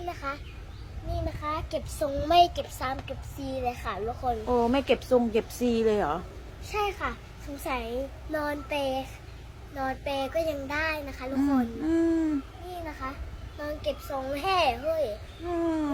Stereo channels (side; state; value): both; identical; correlation 1.00